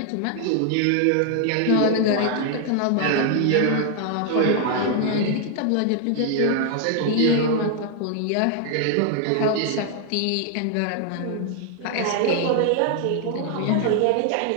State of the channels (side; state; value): both; different; correlation 0.00